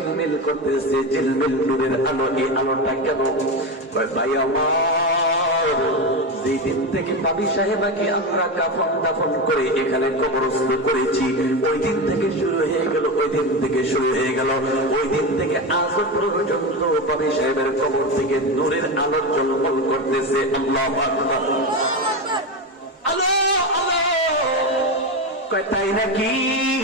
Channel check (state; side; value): normal; both; correlation 0.17